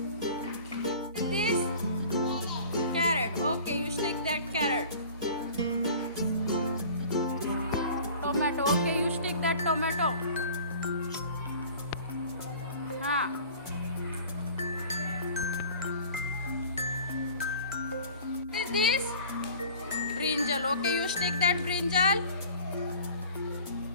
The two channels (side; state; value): both; inverted; correlation -0.44